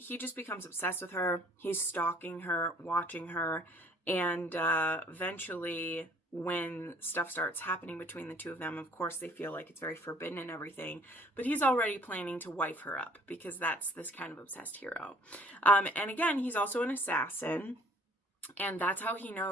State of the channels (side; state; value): both; normal; correlation 0.56